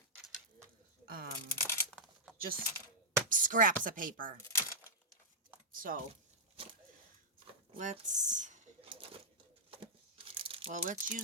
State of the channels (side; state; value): both; normal; correlation -0.08